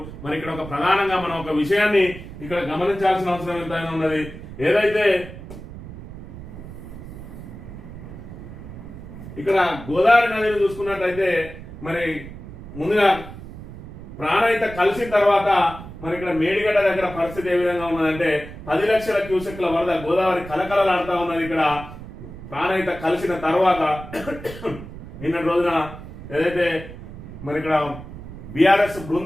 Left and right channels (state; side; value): noise; right; rumble, 13 dB below the sound